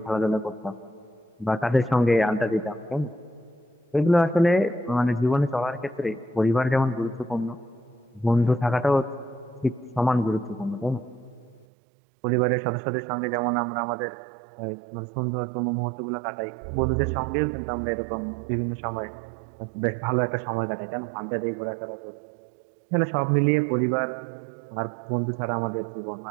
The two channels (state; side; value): drops out; left; at 11.7 s